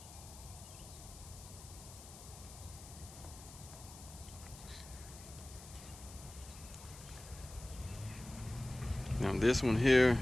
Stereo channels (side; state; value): left; noise; hiss, 16 dB below the sound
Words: Now this one here